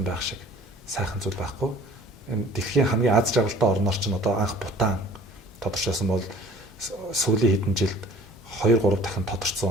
байх шиг сайхан зүйл байхгүй. Энэ дэлхийн хамгийн аз жаргалтай орноор ч одоо анх Бутан тодорчсон бол сүүлийн хэдэн жилд 2-3 дахин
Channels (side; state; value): both; normal; correlation 0.50